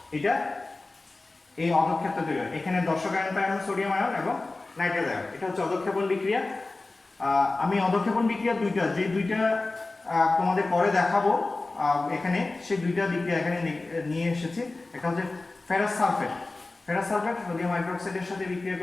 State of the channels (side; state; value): right; quieter; 3.3 dB